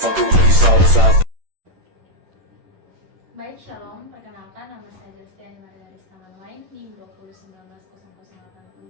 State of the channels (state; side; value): late; left; 10 ms